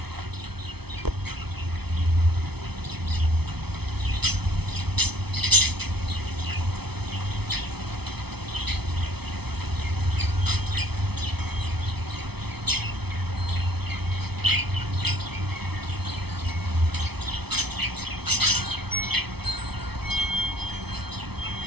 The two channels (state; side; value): late; left; 0.98 ms